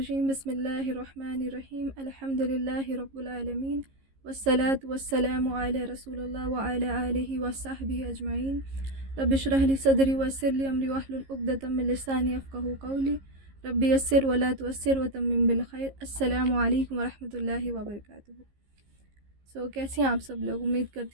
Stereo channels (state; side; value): late; left; 15 ms